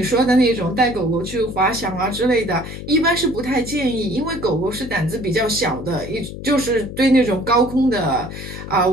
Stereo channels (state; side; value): noise; left; hum, 10 dB below the sound